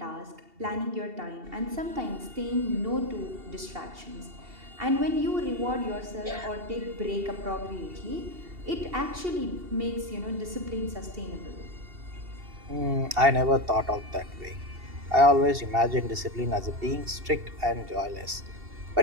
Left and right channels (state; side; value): late; left; 2.7 ms